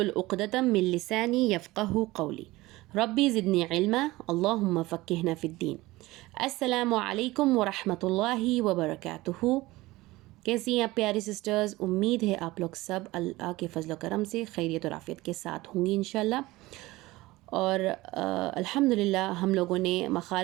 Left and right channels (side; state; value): left; quieter; 19.4 dB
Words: उक़दतम मिन लिसानी यफ़क़हू क़ौली रब्बी ज़िदनी इल्मा अल्लाहुम्मा फ़क़्क़िहना फ़िद्दीन। अस्सलामु अलैकुम व रहमतुल्लाहि व बरकातुहू। कैसी हैं आप प्यारी सिस्टर्स? उम्मीद है आप लोग सब अल्लाह के फ़ज़ल व करम से खैरियत और आफ़ियत के साथ होंगी इंशाअल्लाह। और अल्हम्दुलिल्लाह हम लोगों ने